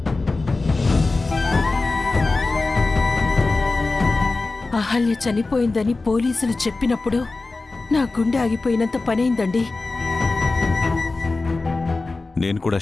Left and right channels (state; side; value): quieter; right; 3.5 dB